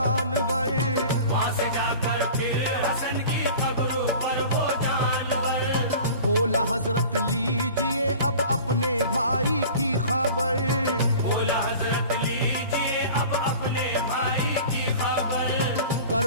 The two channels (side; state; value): both; inverted; correlation -0.41